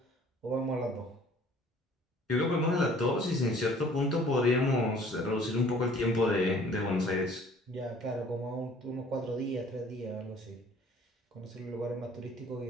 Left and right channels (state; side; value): normal; both; correlation 0.54